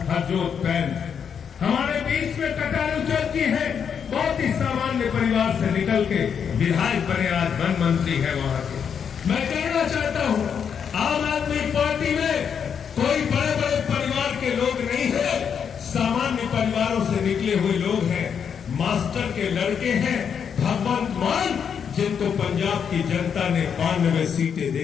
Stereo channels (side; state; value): right; quieter; 7.3 dB